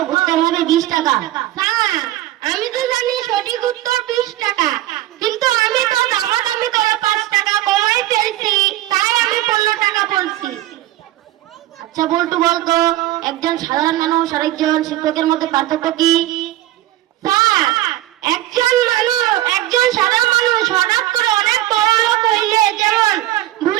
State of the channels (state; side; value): quieter; left; 15.1 dB